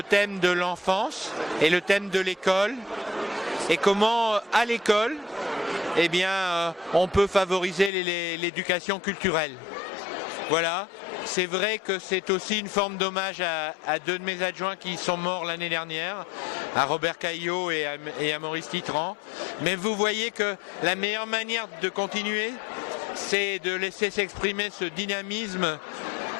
thème de l'enfance et le thème de l'école et comment à l'école on peut favoriser l'éducation culturelle. Voilà, c'est vrai que c'est aussi une forme d'hommage à deux de mes adjoints qui sont morts l'année dernière, à Robert Caillot et à Maurice Titran. Mais vous voyez que la meilleure manière de continuer, c'est de laisser s'exprimer ce dynamisme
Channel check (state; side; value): drops out; right; at 7.9 s